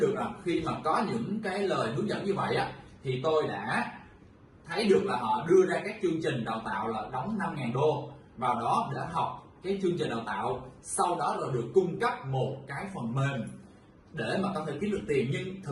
được là khi mà có những cái lời hướng dẫn như vậy á, thì tôi đã thấy được là họ đưa ra các chương trình đào tạo là đóng 5.000 đô vào đó để học cái chương trình đào tạo, sau đó là được cung cấp một cái phần mềm để mà có thể kiếm được tiền, nhưng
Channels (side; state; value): both; identical; correlation 1.00